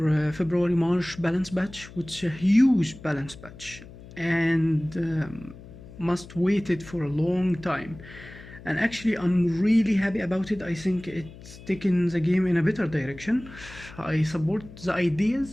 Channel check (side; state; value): left; noise; hum, 18 dB below the sound